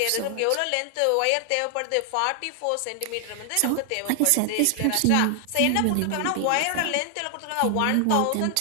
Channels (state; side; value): different; both; correlation 0.00